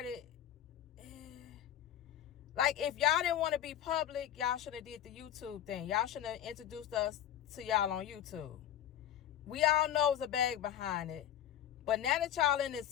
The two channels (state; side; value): quieter; right; 11.0 dB